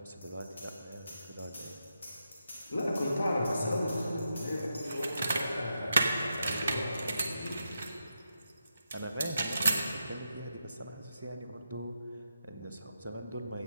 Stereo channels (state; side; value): inverted; both; correlation -0.85